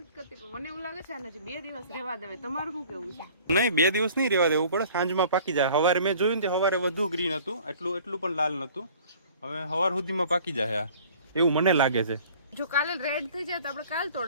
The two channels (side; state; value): both; inverted; correlation -0.50